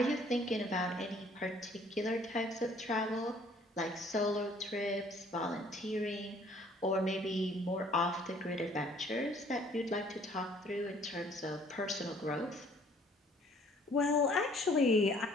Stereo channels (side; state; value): both; normal; correlation 0.58